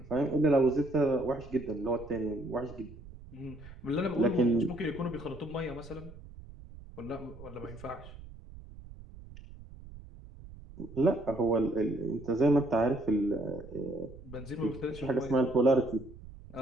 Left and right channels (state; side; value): noise; right; rumble, 17 dB below the sound